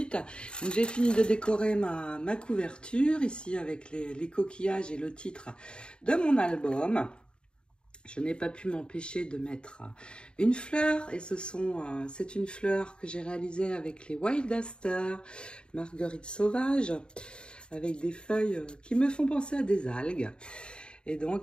J'ai fini de décorer ma couverture ici avec les coquillages et le titre de mon album. Je n'ai pas pu m'empêcher de mettre une fleur et c'est une fleur que j'ai réalisée avec les Wild Aster, marguerite sauvage, avec des feuilles qui me font penser à des algues. Et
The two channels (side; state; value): right; late; 0.051 ms